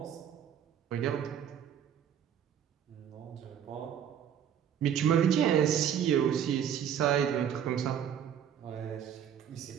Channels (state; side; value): quieter; left; 9.1 dB